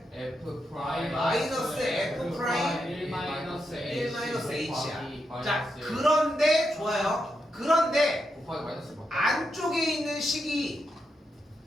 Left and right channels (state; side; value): normal; both; correlation 0.84